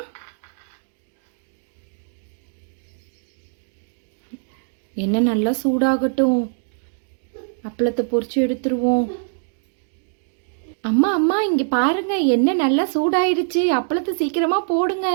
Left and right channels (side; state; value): left; silent; digital silence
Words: எண்ணெய் நல்லா சூடாகட்டும். அப்பளத்தை பொரிச்சு எடுத்துருவோம். அம்மா அம்மா இங்கே பாருங்க, எண்ணெய் நல்லா சூடாயிடுச்சு. அப்பளத்தை சீக்கிரமாக போடுங்க.